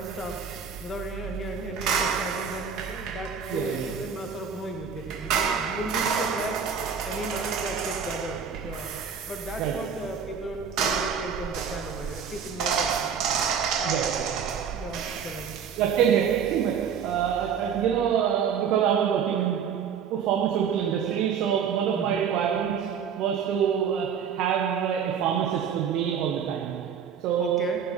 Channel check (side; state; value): left; quieter; 7.1 dB